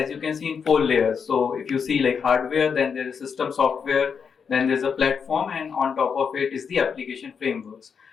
you can see in 4 layers. So if you see like hardware, then there is system software, then there's a platform, and on top of it is the application frameworks.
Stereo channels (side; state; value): right; quieter; 6.4 dB